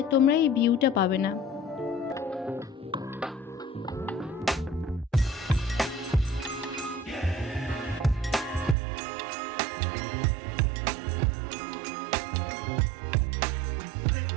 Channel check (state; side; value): drops out; left; at 8.8 s